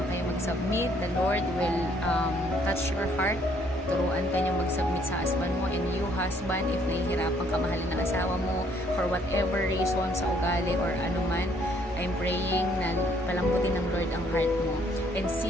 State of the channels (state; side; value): normal; both; correlation 0.65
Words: kayo mag-submit, the Lord will touch your heart. Turuan ka niyo mag-submit sa husband mo, and you husband, if nahihirapan ka mahalin ng asawa mo for whatever reason, sa ugali or anuman, I'm praying na palambutin ng Lord ang heart mo and